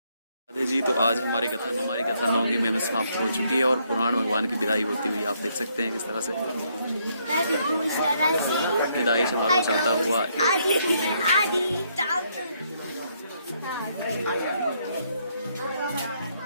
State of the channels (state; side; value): inverted; both; correlation -0.72